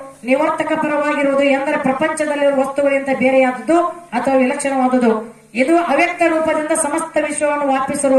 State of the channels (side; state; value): both; identical; correlation 1.00